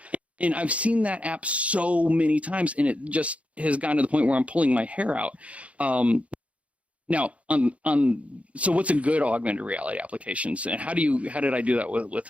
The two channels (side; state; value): left; late; 0.064 ms